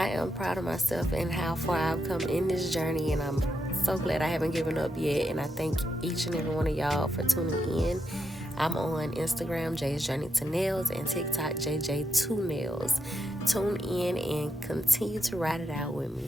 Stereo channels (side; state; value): both; normal; correlation 0.83